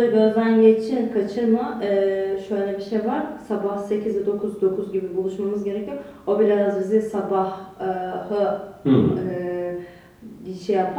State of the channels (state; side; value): identical; both; correlation 1.00